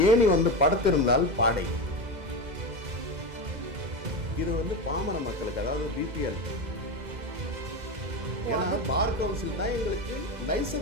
ஏணி வந்து படுத்திருந்தால் பாடை. இது வந்து பாமர மக்களுக்கு, அதாவது பிபிஎல். ஏன்னா பார் கவுன்சில் தான் எங்களுக்கு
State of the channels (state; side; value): late; left; 2.0 ms